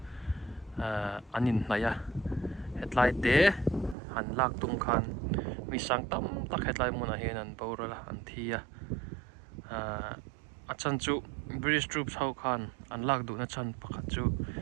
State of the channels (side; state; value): left; drops out; at 4.0 s